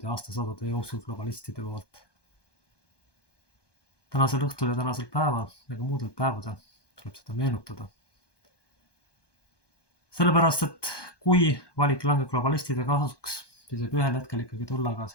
ja aastasadade jooksul globalistide poolt. Tänasel õhtul ja tänasel päeval ja ka muudel päevadel tuleb seda meenutada. Sellepärast, et kui valik langeb globalistide kasuks, siis võib ühel hetkel ikkagi tulla ka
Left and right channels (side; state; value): right; late; 1.2 ms